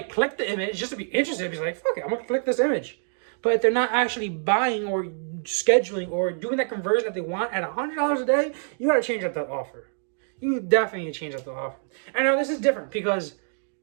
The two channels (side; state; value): left; silent; digital silence